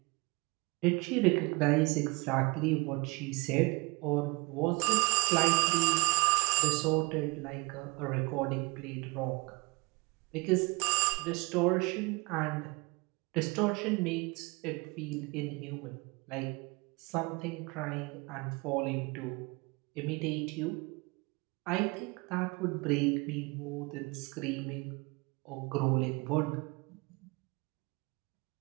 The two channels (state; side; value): quieter; left; 26.7 dB